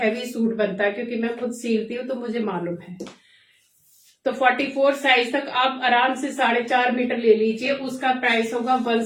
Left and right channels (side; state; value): both; identical; correlation 1.00